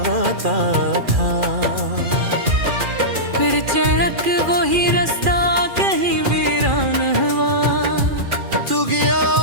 था। फिर चढ़क वही रास्ता कहीं वीरान हुआ, तू गया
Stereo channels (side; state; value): left; late; 2.4 ms